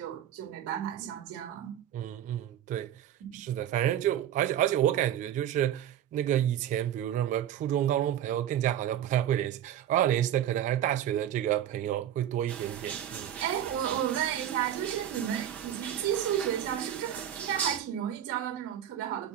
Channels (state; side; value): quieter; left; 10.8 dB